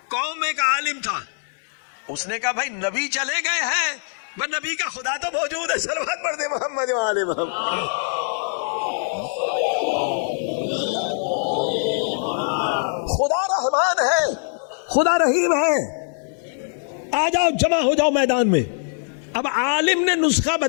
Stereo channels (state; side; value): silent; right; digital silence